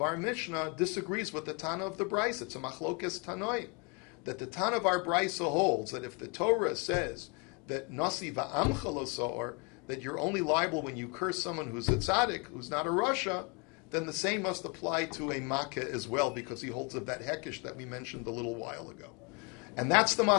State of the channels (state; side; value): quieter; right; 32.0 dB